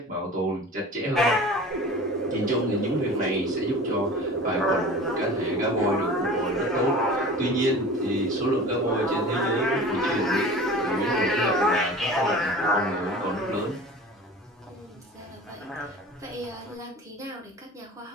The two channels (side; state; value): both; normal; correlation 0.39